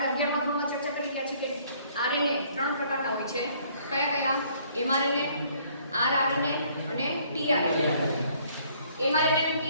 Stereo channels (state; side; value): inverted; both; correlation -0.62